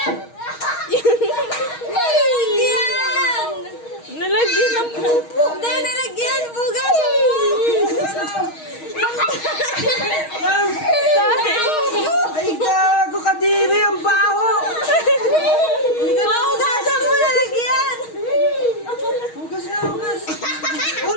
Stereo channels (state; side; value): late; right; 6.4 ms